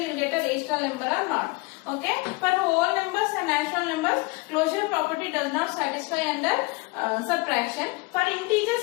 will get a rational number or not. Okay, for whole numbers and natural numbers, closure property does not satisfy under subtraction. For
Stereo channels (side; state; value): right; quieter; 25.4 dB